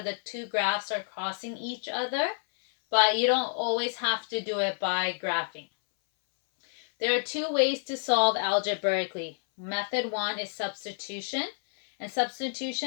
the two graphs are crossing each other, but you don't always have to do it by graphing. There are two ways to solve algebraically. Method one is substitution, and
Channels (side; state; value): right; silent; 59 dB below the other